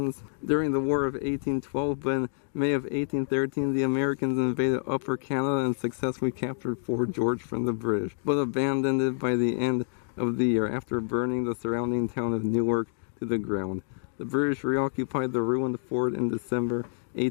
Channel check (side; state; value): right; silent; digital silence